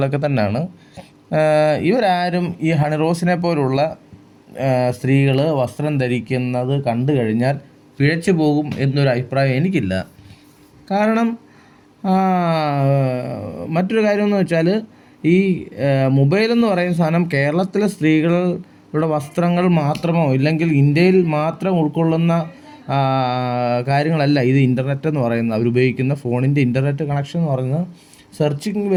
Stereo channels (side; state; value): both; identical; correlation 1.00